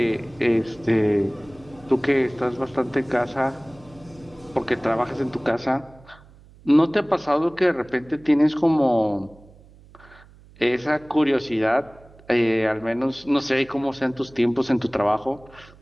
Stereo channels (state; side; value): noise; right; hum, 24 dB below the sound